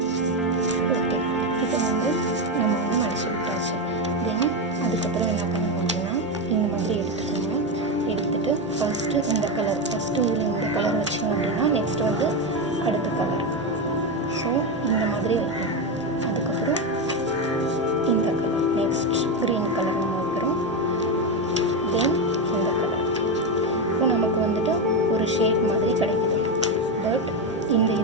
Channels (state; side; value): normal; both; correlation 0.11